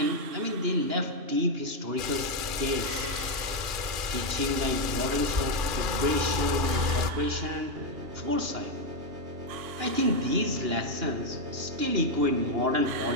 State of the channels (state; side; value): late; left; 2.4 ms